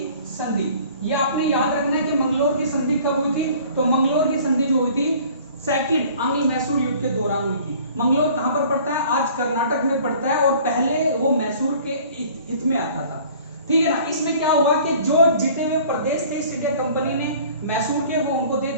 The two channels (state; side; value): inverted; both; correlation -0.50